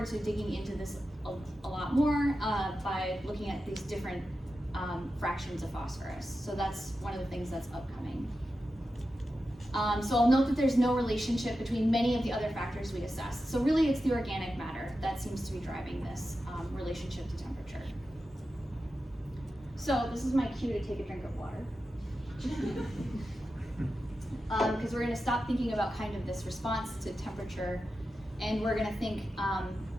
to digging into this a lot more by looking at these different fractions of phosphorus. So that's one of the things that's upcoming. So I'll note that there's no relationship between many of the other factors we assessed. So really it's the organic matter that seems to be driving this relationship to temperature. So this is my cue to take a drink of water. Because we're going to stop thinking about kind of this response to temperature, and we're going to think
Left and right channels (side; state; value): both; normal; correlation 0.91